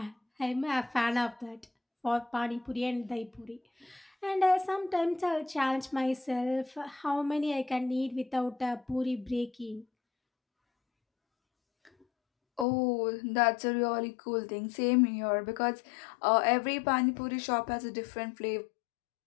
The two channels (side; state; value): right; drops out; at 12.7 s